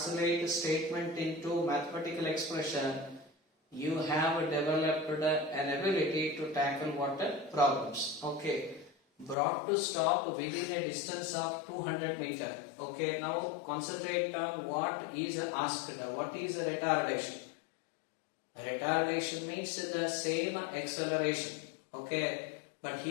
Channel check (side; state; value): right; drops out; at 9.3 s